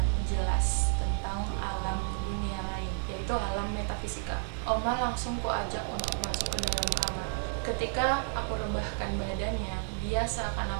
jelas tentang alam dunia lain, yaitu alam metafisika. Oma langsung kuajak untuk masuk ke dalam kamar. Ketika aku rebahkan badannya, dia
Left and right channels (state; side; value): silent; left; 57 dB below the other